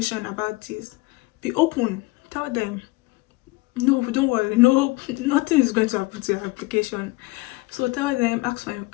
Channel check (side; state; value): right; quieter; 22.4 dB